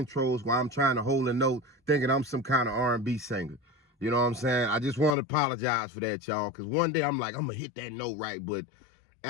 while I'm trying to hold a note thinking I'm some kind of R&B singer. You know what I'm saying? I just want to apologize for that, y'all, because one day I'm like, I'm going to hit that note right, but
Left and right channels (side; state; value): right; drops out; at 5.2 s